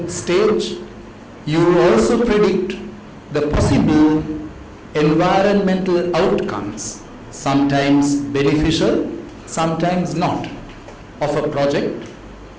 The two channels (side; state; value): both; identical; correlation 1.00